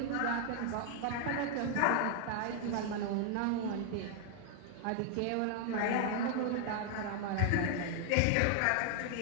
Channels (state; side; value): different; both; correlation 0.00